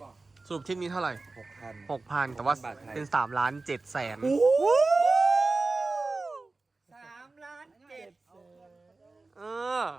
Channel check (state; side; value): quieter; left; 3.5 dB